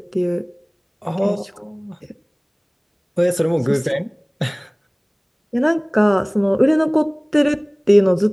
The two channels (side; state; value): both; identical; correlation 1.00